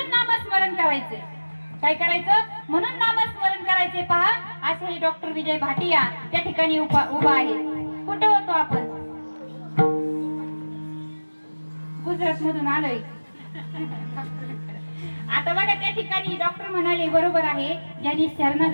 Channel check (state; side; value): inverted; both; correlation -1.00